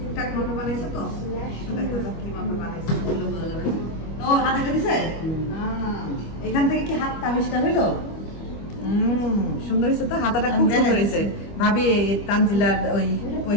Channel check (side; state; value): right; late; 25 ms